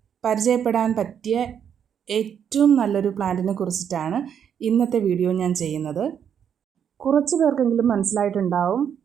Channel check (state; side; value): quieter; left; 8.3 dB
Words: പരിചയപ്പെടാൻ പറ്റിയ ഏറ്റവും നല്ലൊരു പ്ലാന്റിനെ കുറിച്ചിട്ടാണ് ഇന്നത്തെ വീഡിയോ ഞാൻ ചെയ്യുന്നത്. കുറച്ച് പേർക്കെങ്കിലും മനസ്സിലായിട്ടുണ്ടാവും